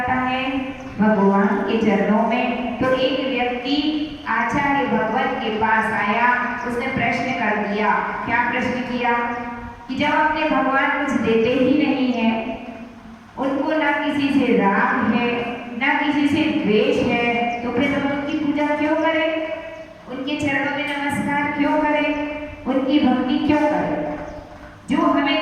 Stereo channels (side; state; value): both; identical; correlation 1.00